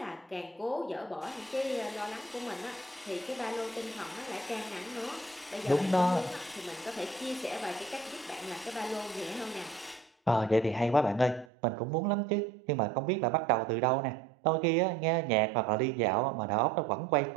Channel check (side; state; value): left; drops out; at 11.5 s